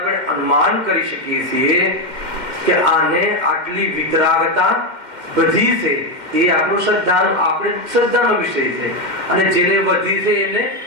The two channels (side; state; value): left; late; 2.1 ms